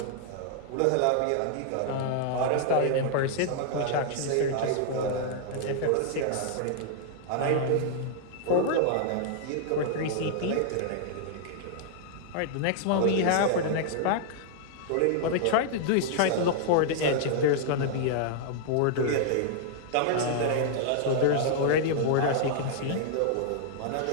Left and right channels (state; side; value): different; both; correlation -0.01